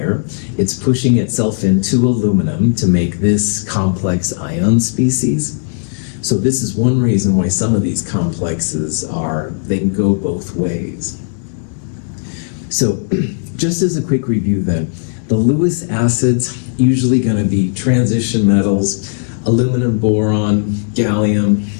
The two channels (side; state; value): right; silent; digital silence